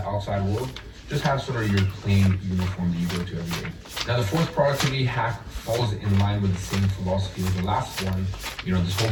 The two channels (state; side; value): identical; both; correlation 1.00